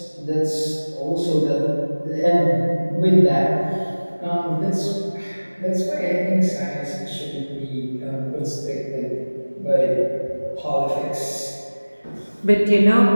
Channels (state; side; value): inverted; both; correlation -1.00